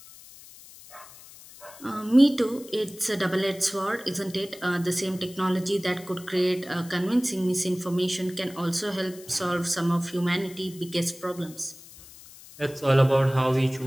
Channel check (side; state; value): left; noise; hiss, 19 dB below the sound